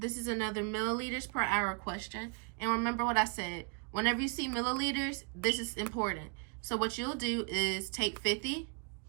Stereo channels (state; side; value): quieter; left; 34.4 dB